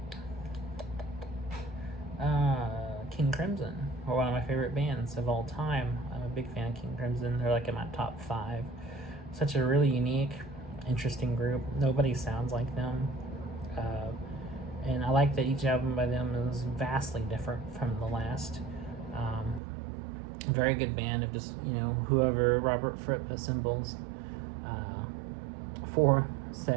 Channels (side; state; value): left; drops out; at 19.6 s